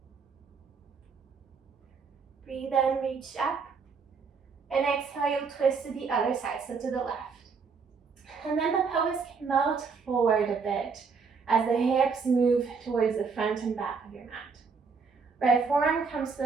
Breathe in, reach up. And exhale, you'll twist to the other side, so to the left. And then the pelvis can melt forward a bit as the hips move towards the front and back of your mat. Right forearm comes to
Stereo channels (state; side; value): quieter; left; 5.2 dB